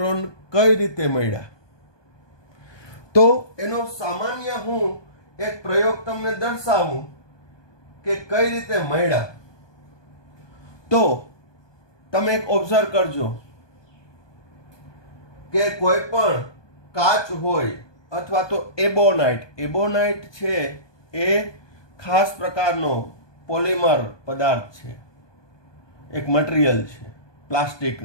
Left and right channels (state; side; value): late; right; 1.2 ms